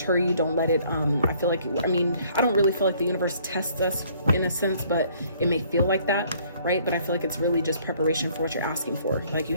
you. Don't let it, I feel like, I mean, I don't really feel like the universe tests us in a sense, but it may feel like that, right? But I feel like it's really just preparation for what you're asking for. Like, you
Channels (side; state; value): both; inverted; correlation -0.61